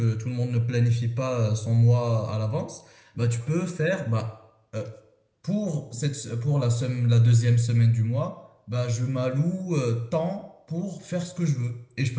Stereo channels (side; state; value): both; identical; correlation 1.00